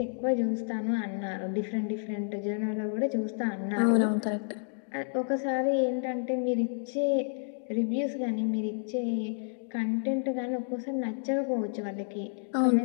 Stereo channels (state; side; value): silent; right; digital silence